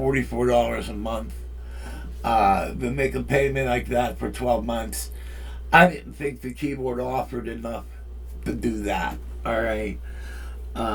a month, to make a payment like that for 12 months, I didn't think the keyboard offered enough to do that, all right.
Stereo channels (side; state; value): both; identical; correlation 1.00